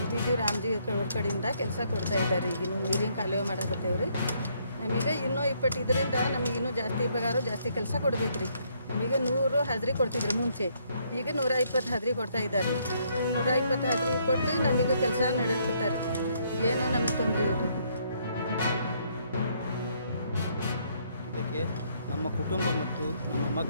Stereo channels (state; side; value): inverted; both; correlation -0.70